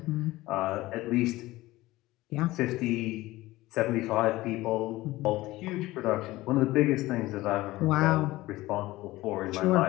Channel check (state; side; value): quieter; right; 18.2 dB